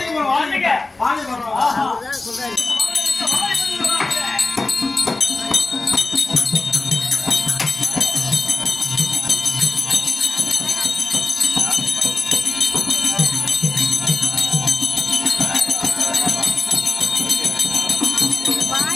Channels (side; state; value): right; quieter; 3.3 dB